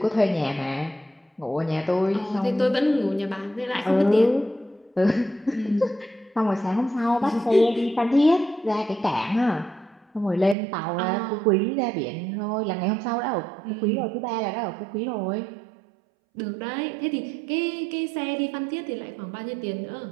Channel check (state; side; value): drops out; left; at 10.6 s